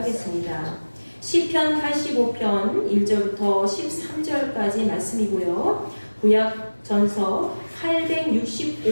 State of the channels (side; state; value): both; inverted; correlation -1.00